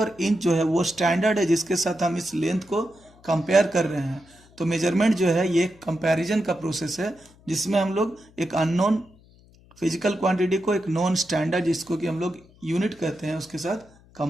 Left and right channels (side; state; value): left; noise; hum, 27 dB below the sound